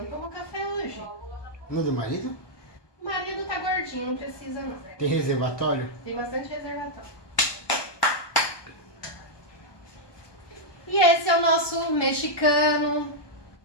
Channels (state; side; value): late; right; 1.2 ms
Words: tomou café hoje. No do marido? O marido tá gordinho, não precisa não. Tem reservatório? Tem bastante reservatório. E esse é o nosso mexicano.